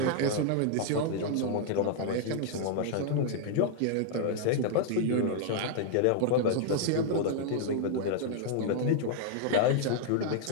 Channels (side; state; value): both; different; correlation -0.01